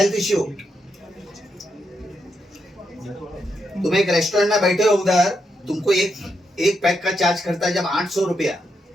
issue? तुम एक रेस्टोरेंट में बैठे हो, उधर तुमको एक पैक का चार्ज करता है जब 800 रुपया,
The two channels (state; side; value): normal; both; correlation 0.82